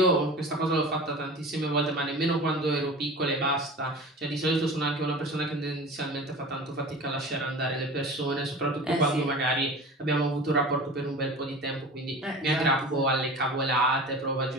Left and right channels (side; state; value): both; normal; correlation 0.36